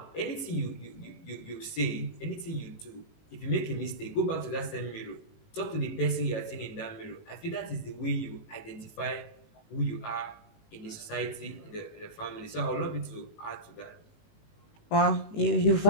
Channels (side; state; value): right; late; 19 ms